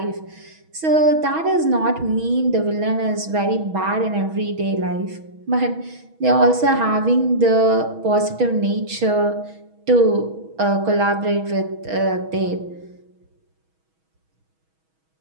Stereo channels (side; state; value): left; late; 6.3 ms